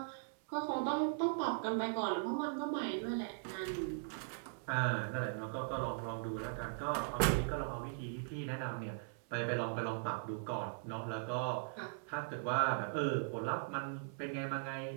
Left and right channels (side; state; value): left; silent; 51 dB below the other